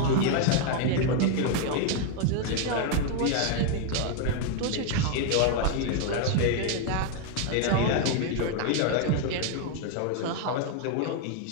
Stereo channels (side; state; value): both; different; correlation 0.00